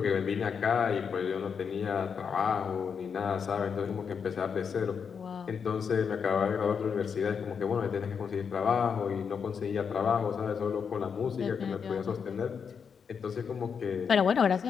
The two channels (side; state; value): right; quieter; 6.5 dB